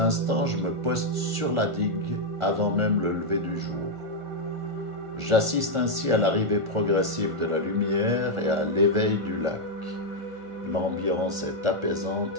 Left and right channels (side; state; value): left; late; 1.4 ms